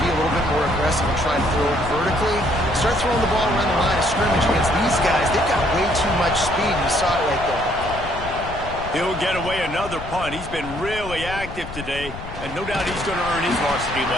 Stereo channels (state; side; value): noise; left; rumble, 11 dB below the sound